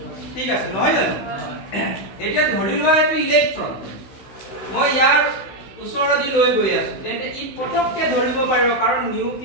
ঠিক আছে নহয় জানো এতিয়া ধৰি লোৱা এটো ইলেক্ট্ৰন মই ইয়াৰ ওচৰদি লৈ গৈ আছো তেন্তে ই পটককে ধৰিব পাৰিব কাৰণ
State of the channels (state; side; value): late; right; 16 ms